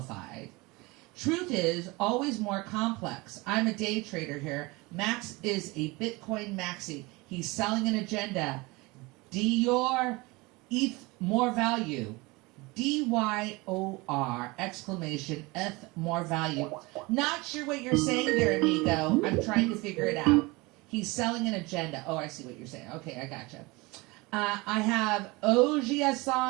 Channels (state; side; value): quieter; left; 24.0 dB